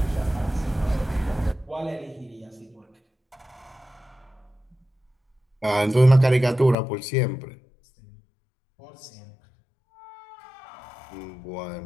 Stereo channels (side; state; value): right; drops out; at 6.8 s